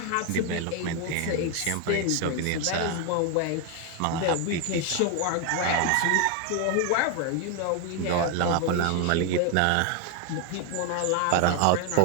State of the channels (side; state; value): both; different; correlation 0.01